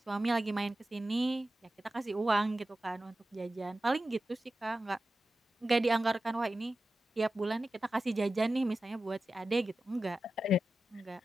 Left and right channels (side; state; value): both; normal; correlation 0.93